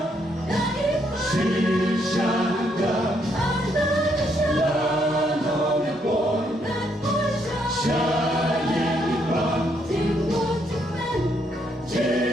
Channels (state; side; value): normal; both; correlation 0.74